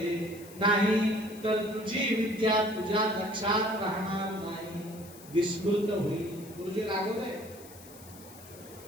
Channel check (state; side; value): noise; left; hiss, 19 dB below the sound